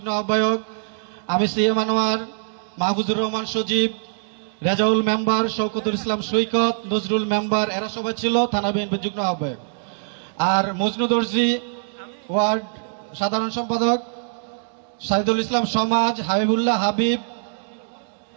আহ্বায়ক। আমি সিএম আনোয়ার, মাহফুজুর রহমান সজীব, রেজাউল মেম্বার, শওকতুল ইসলাম সৈকত, নজরুল মেম্বার, এরা সবাই ছিল থানা বিএনপি যুগ্ম আহ্বায়ক। আর মজনু দর্জি ওয়ার্ড সাধারণ সম্পাদক, সাইদুল ইসলাম সমাজ, হাবিবুল্লাহ হাবিব,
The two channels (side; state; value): left; silent; digital silence